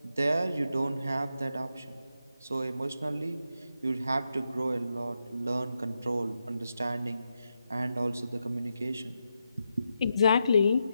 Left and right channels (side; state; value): both; inverted; correlation -0.86